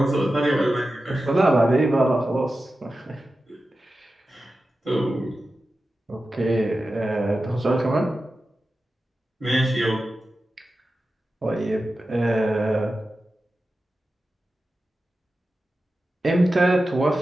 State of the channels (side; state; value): both; normal; correlation 0.93